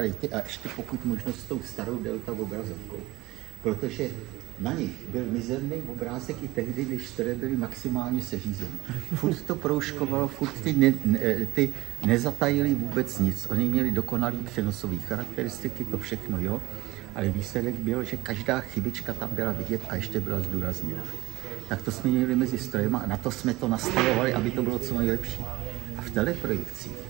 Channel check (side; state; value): left; quieter; 19.7 dB